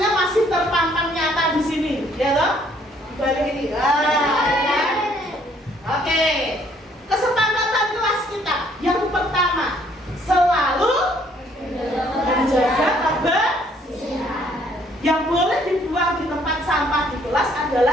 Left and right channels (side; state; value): both; normal; correlation 0.64